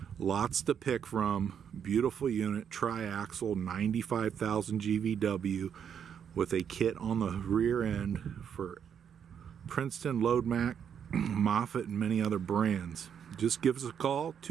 Lots to pick from. Beautiful unit, triaxle, 95,000 GVW with a kit on the rear end for Princeton, Load Mac, Moffett, and many other brands. Just give us a call,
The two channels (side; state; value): left; quieter; 8.0 dB